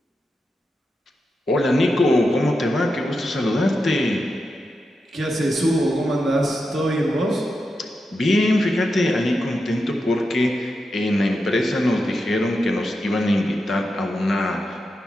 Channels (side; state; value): both; normal; correlation 0.88